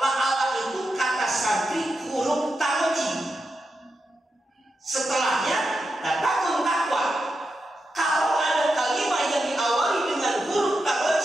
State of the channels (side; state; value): both; normal; correlation 0.88